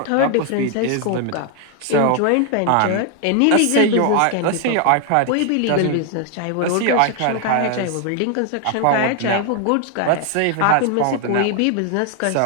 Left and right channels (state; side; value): different; both; correlation 0.00